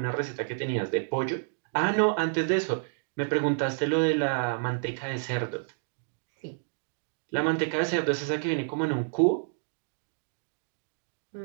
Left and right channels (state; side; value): silent; left; digital silence